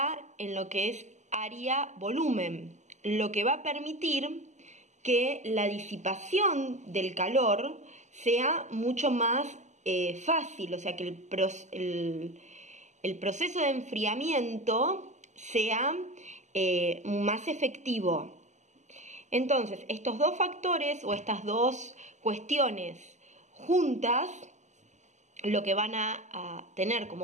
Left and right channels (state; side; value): late; left; 0.34 ms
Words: en lo que es área-volumen, lo que va a permitir que la disipación del calor sea mucho más fácil, o sea que el proceso de enfriamiento sea más efectivo. Entonces, estos dos factores o estas dos cuestiones juntas, lo que van a tener